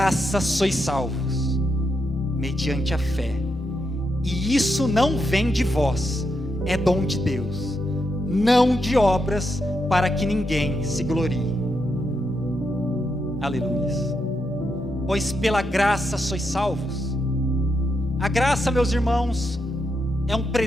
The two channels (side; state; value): both; normal; correlation 0.82